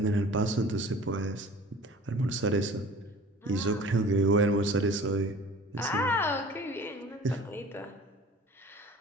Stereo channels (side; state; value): both; normal; correlation 0.44